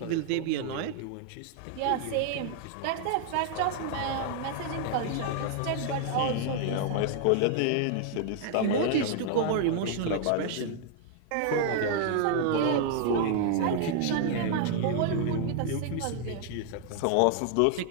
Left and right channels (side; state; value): both; different; correlation 0.00